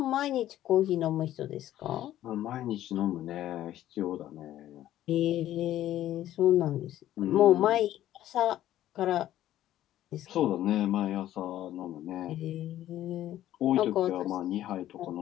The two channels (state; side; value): quieter; right; 13.0 dB